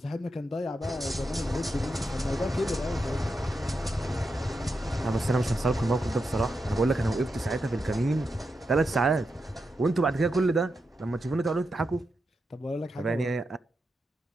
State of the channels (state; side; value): normal; both; correlation 0.87